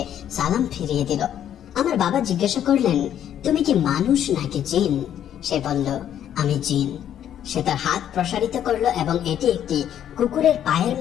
সালাম ফিরিয়ে দিল। আমার বাবা জিজ্ঞাসা করলেন, তুমি কি মানুষ নাকি জিন? সে বলল, আমি জিন। সে তার হাত প্রসারিত করলো এবং এটি একটি কুকুরের পায়ের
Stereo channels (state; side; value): quieter; right; 10.3 dB